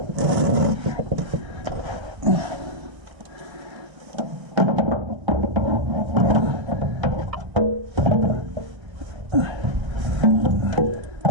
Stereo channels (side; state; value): left; late; 1.3 ms